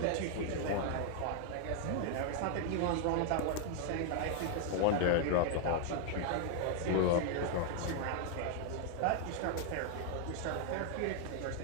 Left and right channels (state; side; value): different; both; correlation 0.00